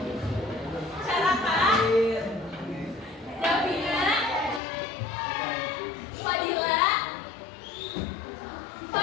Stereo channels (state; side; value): drops out; right; at 4.6 s